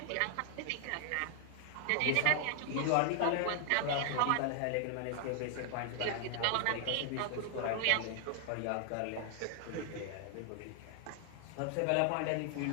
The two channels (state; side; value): different; both; correlation 0.00